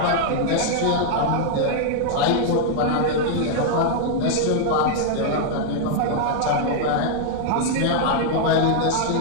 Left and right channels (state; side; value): different; both; correlation -0.01